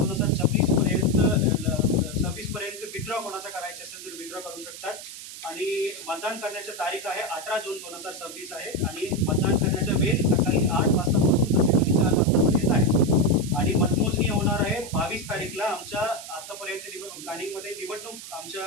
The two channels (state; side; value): noise; right; hiss, 12 dB below the sound